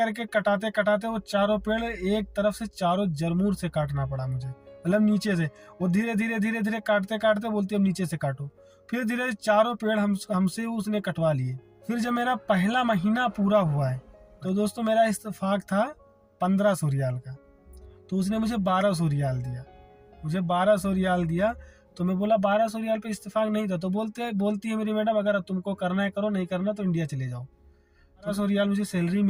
कटाते कटाते वो चारों पेड़ एक तरफ से चारों जरमूर से काटना पड़ा मुझे, मतलब नीचे से। वो धीरे धीरे काटते काटते बोलती अब नीचे से काटो। फिर धीरे चारों पेड़ हमसे उसने कटवा लिए। फिर जब मेरा पहला महीना पूरा हुआ है तो दोस्तों मेरा इत्तेफाक था 1500 रियाल का, तो उसने मुझे 1200 रियाल दिया। मुझे 1200 रियाल दिया तो मैं बोला 1200 रियाल पे इत्तेफाक नहीं था। तो बोलती है मेरी मैडम अगर तुमको करना है करो, नहीं करना तो इंडिया चले जाओ। 1200 रियाल मुझे सैलरी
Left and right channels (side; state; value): both; identical; correlation 1.00